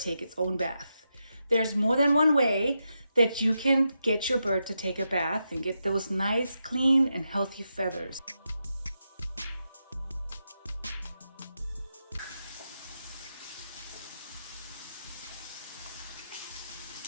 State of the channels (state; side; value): inverted; both; correlation -0.86